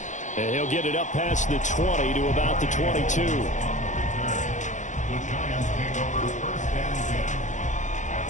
And he'll get it up past the 20 to about the 22. The Giants take over 1st and 10 at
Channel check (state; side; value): late; right; 0.35 ms